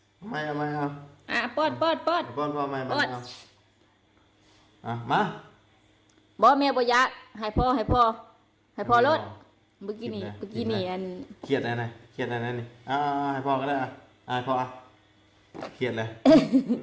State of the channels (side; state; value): both; identical; correlation 1.00